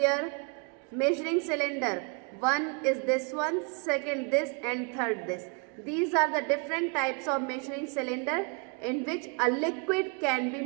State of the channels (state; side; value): quieter; left; 34.9 dB